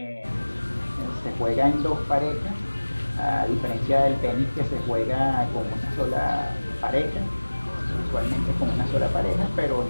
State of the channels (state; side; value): inverted; both; correlation -1.00